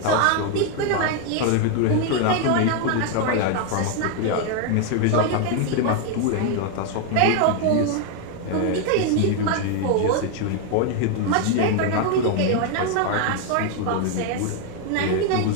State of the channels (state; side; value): different; both; correlation 0.01